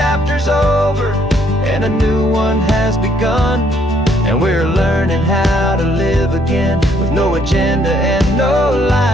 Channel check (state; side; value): normal; both; correlation 0.68